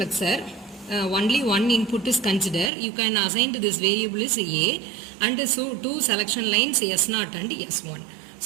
only one input is considered. You can assign to this variable is A and so two selection lines S0 and S1.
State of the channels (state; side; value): drops out; left; at 2.7 s